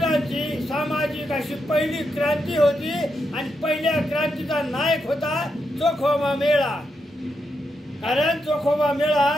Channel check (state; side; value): normal; both; correlation 0.83